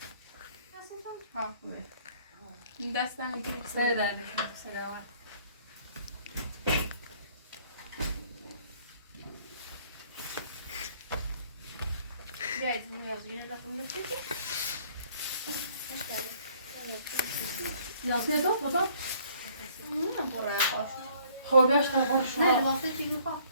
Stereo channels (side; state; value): both; inverted; correlation -0.60